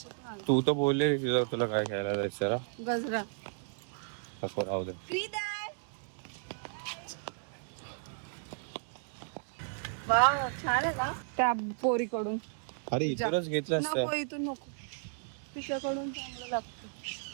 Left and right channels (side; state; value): left; silent; digital silence